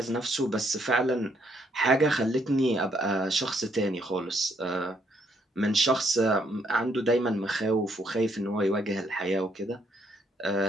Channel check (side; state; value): both; normal; correlation 0.71